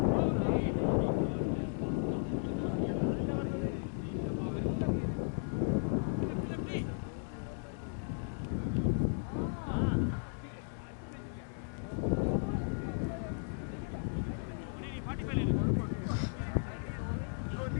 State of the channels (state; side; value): silent; right; digital silence